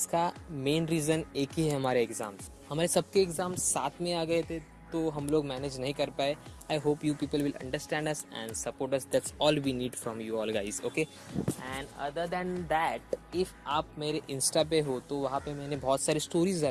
main reason एक ही है, हमारे एग्ज़ाम्स. हमारे सबके एग्ज़ाम्स साथ में आ गए थे तो हम लोग मैनेज नहीं कर पाए. I hope you people will understand us and support us. That's all we need from you all guys. Okay. And other than that, if आप मेरे इंस्टा पे हो तो वहाँ पे मैंने बहुत सारी स्टोरीज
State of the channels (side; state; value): both; identical; correlation 1.00